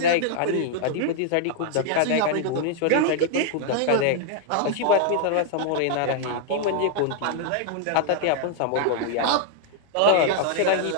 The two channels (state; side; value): different; both; correlation -0.01